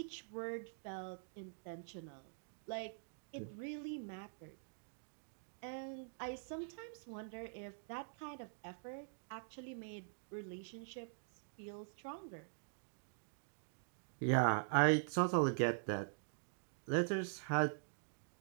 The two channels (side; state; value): left; silent; digital silence